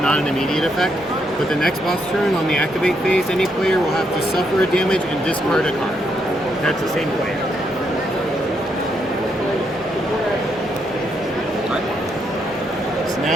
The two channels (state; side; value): normal; both; correlation 0.77